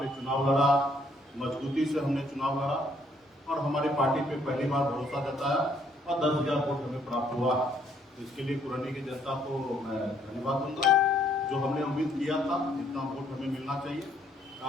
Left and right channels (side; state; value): both; normal; correlation 0.66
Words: चुनाव लड़ा, मजबूती से हमने चुनाव लड़ा और हमारी पार्टी पे पहली बार भरोसा जताया और 10,000 वोट हमें प्राप्त हुआ। इसके लिए पुरनी की जनता को मैं धन्यवाद दूंगा। जो हमने उम्मीद किया था जितना वोट हमें मिलना चाहिए,